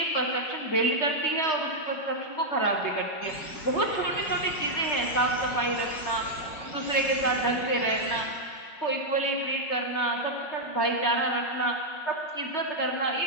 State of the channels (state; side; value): late; right; 5.4 ms